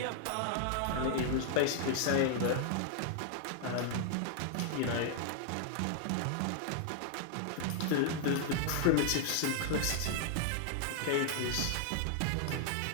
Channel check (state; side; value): different; both; correlation 0.00